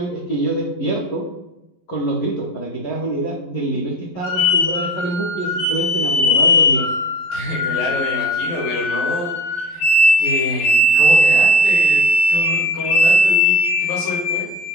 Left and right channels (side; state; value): right; late; 11 ms